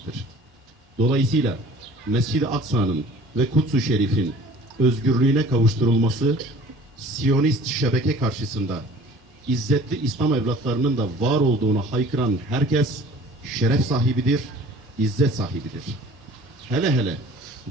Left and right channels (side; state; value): both; normal; correlation 0.48